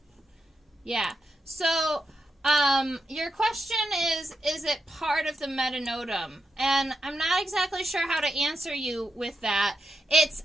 Yeah, so your question is it part of the Metanodum? And I'm not exactly sure how to answer you with that. It's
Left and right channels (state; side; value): normal; both; correlation 0.85